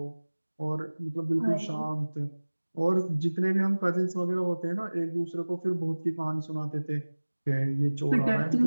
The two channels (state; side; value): inverted; both; correlation -1.00